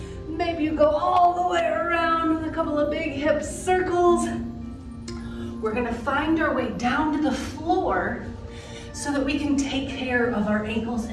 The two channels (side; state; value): both; identical; correlation 1.00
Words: Maybe you go all the way around with a couple of big hip circles. We're gonna find our way down to the floor so that we can take care of our ankles